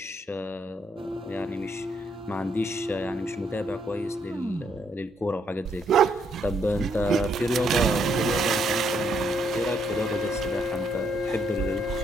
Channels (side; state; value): both; normal; correlation 0.73